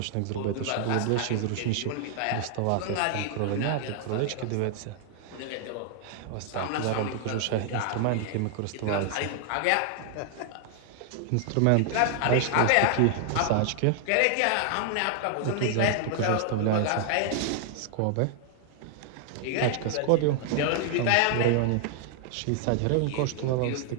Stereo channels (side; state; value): both; different; correlation 0.00